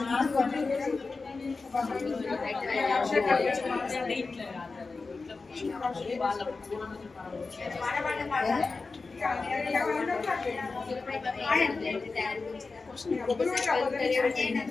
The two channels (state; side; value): quieter; right; 4.0 dB